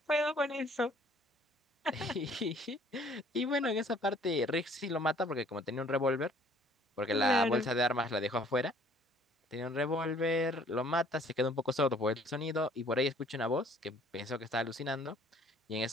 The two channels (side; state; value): both; normal; correlation 0.57